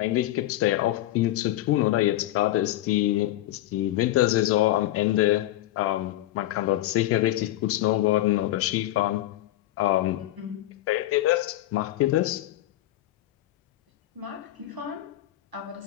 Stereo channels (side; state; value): right; quieter; 15.0 dB